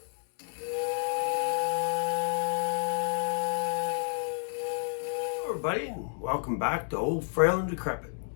everybody, and welcome back to Old Frail and Decrepit.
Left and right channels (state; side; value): silent; right; digital silence